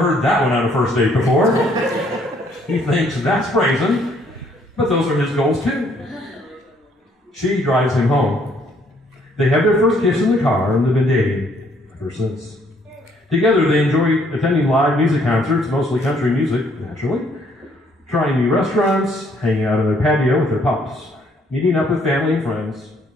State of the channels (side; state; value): both; normal; correlation 0.66